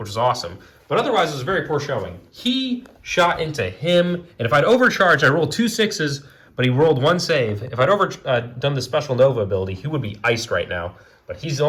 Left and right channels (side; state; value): both; identical; correlation 1.00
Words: was awesome, but otherwise it was a very poor showing. He shot into him, and if I'd overcharged, I rolled 2 6s, but he rolled 1 save. If I'd done the special Nova ability, he would be iced right now, but he's